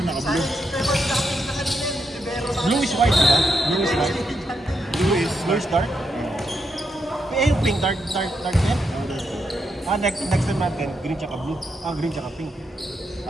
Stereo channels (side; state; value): both; normal; correlation 0.82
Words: naka-blue. Blue is white, diba? Blue is white. Blue is dark. Eh, yung pink, dark yan. Next time natin, green tsaka blue. Green tsaka pink.